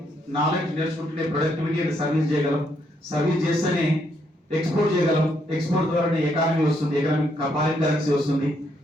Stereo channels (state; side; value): normal; both; correlation 0.74